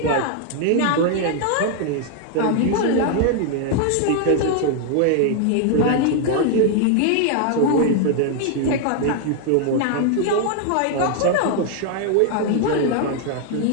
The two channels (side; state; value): both; different; correlation 0.00